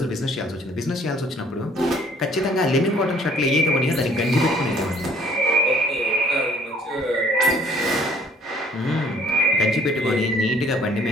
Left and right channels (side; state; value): both; normal; correlation 0.58